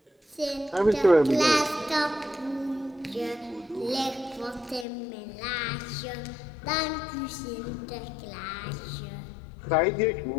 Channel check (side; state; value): right; drops out; at 4.9 s